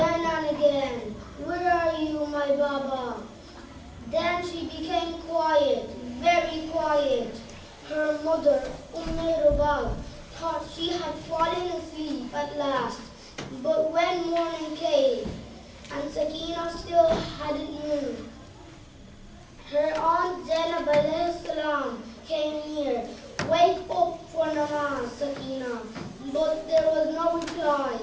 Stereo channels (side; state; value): both; identical; correlation 1.00